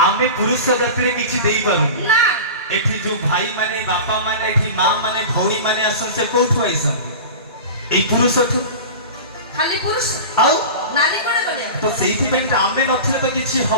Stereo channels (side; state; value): both; inverted; correlation -0.31